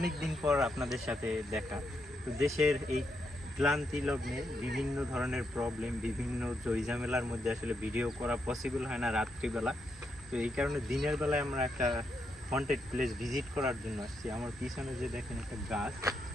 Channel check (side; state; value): both; normal; correlation 0.81